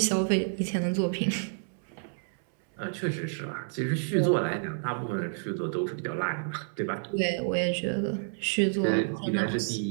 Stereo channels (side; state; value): left; silent; 58 dB below the other